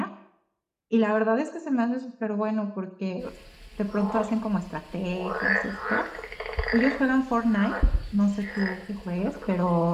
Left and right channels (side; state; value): both; identical; correlation 1.00